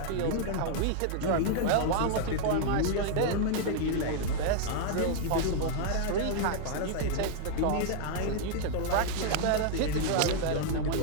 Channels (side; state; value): both; different; correlation 0.00